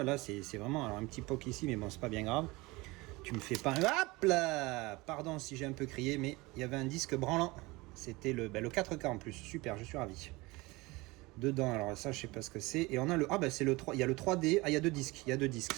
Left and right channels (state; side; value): quieter; left; 22.6 dB